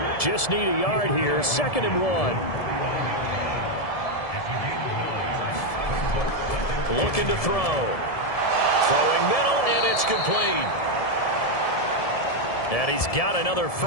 Just need a yard here. 2nd and 1. Looking to throw. Throwing middle, and it's complete. And he's got another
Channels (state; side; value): late; right; 1.7 ms